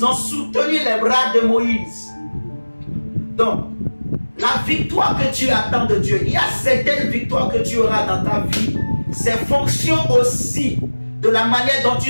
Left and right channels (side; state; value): both; inverted; correlation -1.00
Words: ont soutenu les bras de Moïse. Donc, la victoire que tu attends de Dieu, il y a certaines victoires que tu auras dans ta vie. C'est fonction aussi de la manière dont